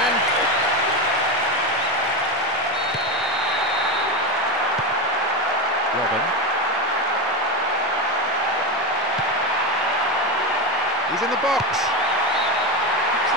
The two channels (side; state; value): both; normal; correlation 0.15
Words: Robben. He's in the box. Looks